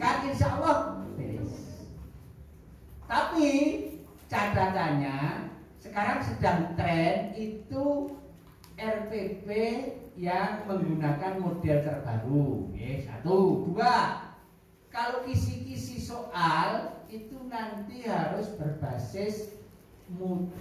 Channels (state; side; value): identical; both; correlation 1.00